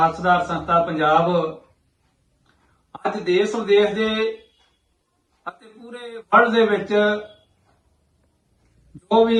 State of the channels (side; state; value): both; identical; correlation 1.00